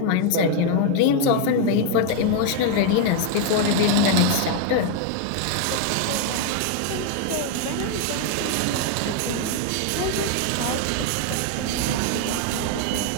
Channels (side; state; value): both; different; correlation 0.00